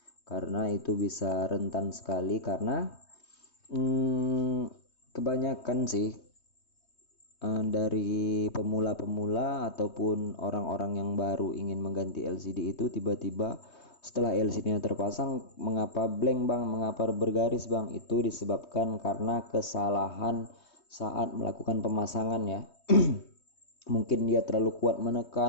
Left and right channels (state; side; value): late; right; 3.2 ms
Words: karena itu bisa rentan sekali. Karena kebanyakan sih dari pemula-pemula ataupun orang-orang yang baru ingin mengganti LCD itu tiba-tiba setelah LCD-nya terpasang, mengapa blank bang, mengapa bergaris bang? Itu disebabkan karena kesalahan saat melakukan pemasangan ya. Mungkin dia terlalu kuat